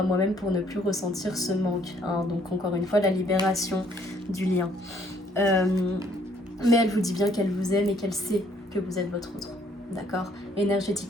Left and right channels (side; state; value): both; normal; correlation 0.64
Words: moi-même, pour ne plus ressentir ce manque. Hein. Donc encore une fois, la libération du lien. Mais elle vous dit bien qu'elle vous aime et qu'elle sait que vous êtes votre autre. D'accord?